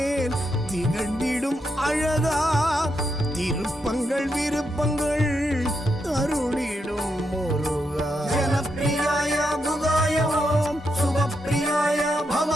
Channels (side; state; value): both; normal; correlation 0.82